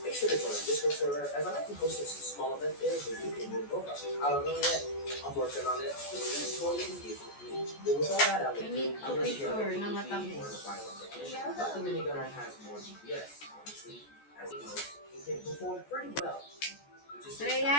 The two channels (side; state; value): right; late; 14 ms